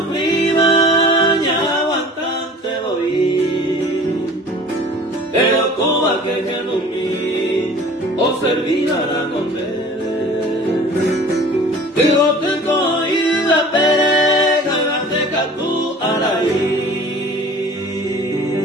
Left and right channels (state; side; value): normal; both; correlation 0.45